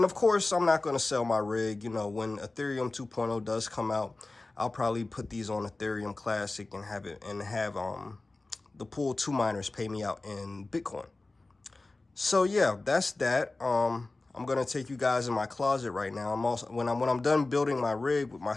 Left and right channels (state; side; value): quieter; right; 3.2 dB